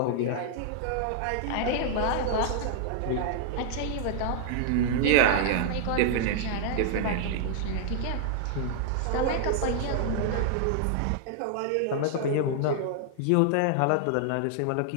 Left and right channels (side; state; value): both; different; correlation 0.00